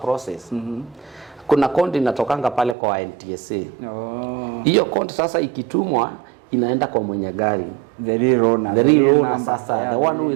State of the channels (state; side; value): drops out; left; at 2.8 s